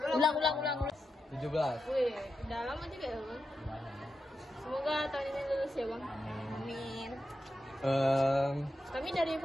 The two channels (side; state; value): both; normal; correlation 0.88